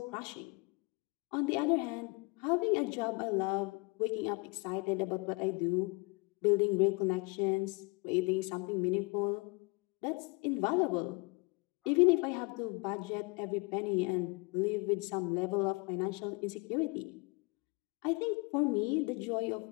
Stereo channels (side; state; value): right; quieter; 28.6 dB